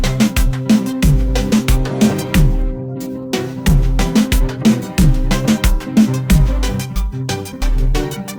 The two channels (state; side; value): identical; both; correlation 1.00